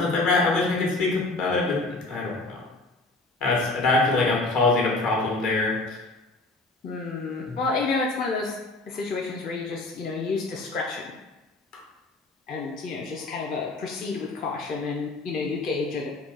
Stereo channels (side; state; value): right; quieter; 3.0 dB